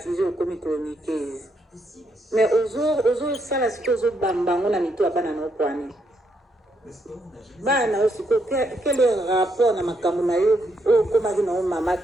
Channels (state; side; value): normal; both; correlation 0.77